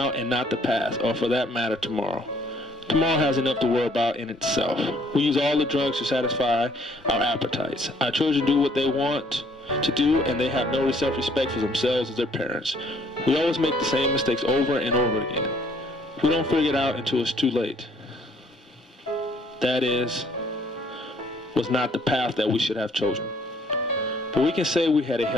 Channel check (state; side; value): normal; both; correlation 0.63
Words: and not the past, or for that matter, tomorrow. Tomorrow has enough to worry about in itself. We use all the drugs to satisfy our appetites. Our children do what they want to do, and they have no self-respect for themselves as their parents. We always make the same mistakes over and over again. We don't figure it out until it's too late. That was not the path that we should have chosen. But we can say we had a